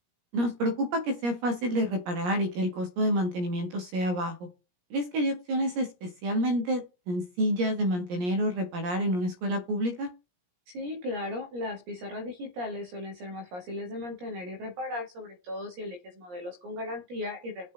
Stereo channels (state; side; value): late; left; 17 ms